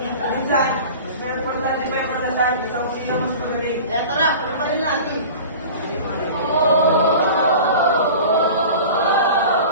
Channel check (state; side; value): inverted; both; correlation -0.38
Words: Minsan, mas may importante pa yung pagdasal. Isang sino mas magaling. Kaya tara,